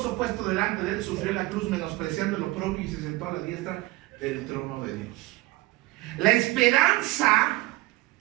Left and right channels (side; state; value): left; quieter; 19.6 dB